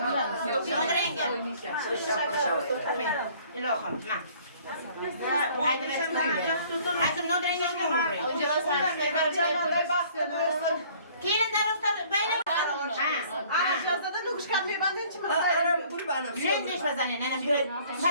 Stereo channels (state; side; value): inverted; both; correlation -0.55